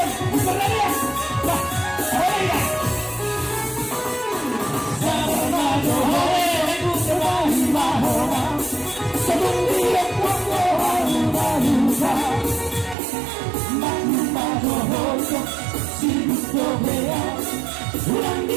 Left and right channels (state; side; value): drops out; left; at 13.0 s